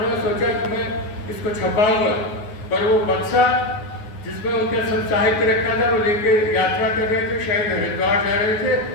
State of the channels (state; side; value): late; right; 9.5 ms